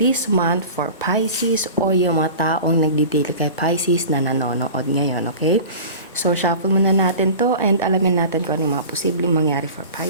month for Pisces o yung mga taong nagdidili kay Pisces na nanonood ngayon. Okay, so shuffle muna natin to and alamin natin kung ano yung mga posibleng mangyari for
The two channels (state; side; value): inverted; both; correlation -0.37